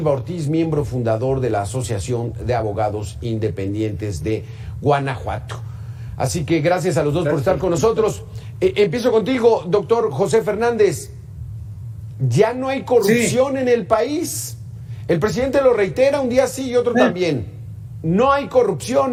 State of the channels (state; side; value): identical; both; correlation 1.00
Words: Ortiz, miembro fundador de la Asociación de Abogados Independientes de Guanajuato. Así que gracias a los dos por estar con nosotros. Empiezo contigo, doctor José Fernández. ¿Ya no hay corrupción en el país? El presidente lo reitera un día sí y otro también. No hay